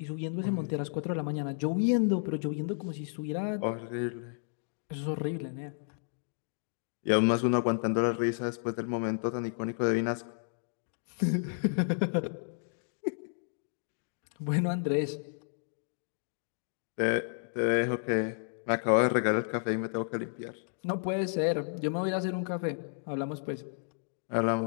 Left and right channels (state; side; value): silent; right; digital silence